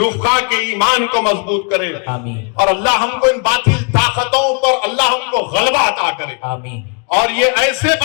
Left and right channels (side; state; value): right; quieter; 36.4 dB